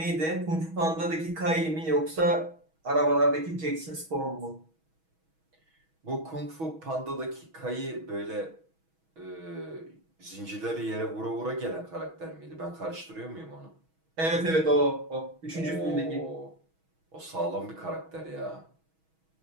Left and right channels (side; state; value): left; late; 6.2 ms